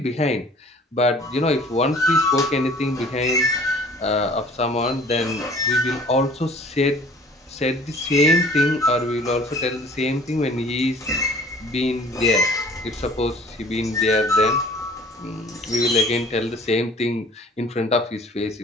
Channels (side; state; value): both; normal; correlation 0.50